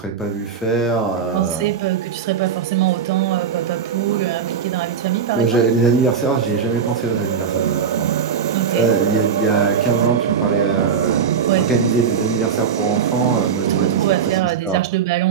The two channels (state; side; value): quieter; left; 6.9 dB